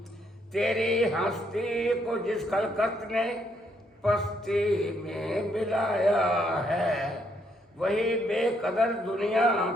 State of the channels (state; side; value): normal; both; correlation 0.73